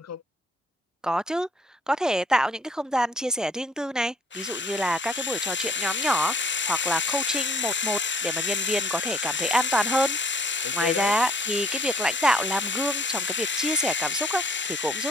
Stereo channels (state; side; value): normal; both; correlation 0.59